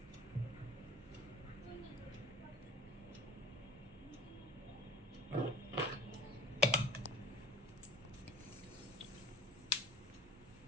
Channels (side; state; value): both; normal; correlation 0.41